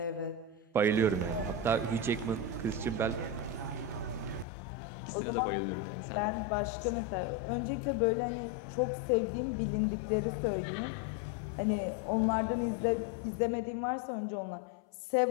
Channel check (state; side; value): drops out; right; at 4.5 s